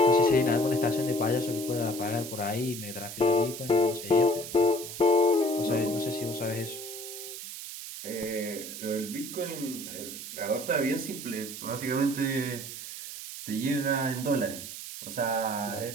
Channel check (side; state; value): right; noise; hiss, 9 dB below the sound